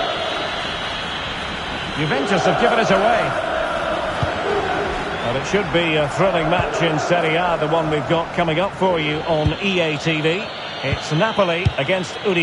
Juventus have given it away. Well, it should be a thrilling match in Serie A, the one we've got coming up for you on EA TV. It's Napoli against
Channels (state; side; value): identical; both; correlation 1.00